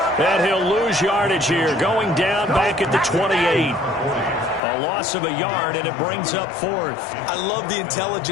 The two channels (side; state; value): right; drops out; at 4.6 s